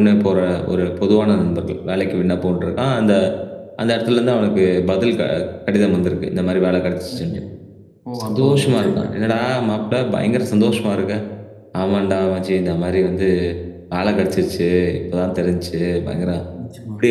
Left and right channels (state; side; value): identical; both; correlation 1.00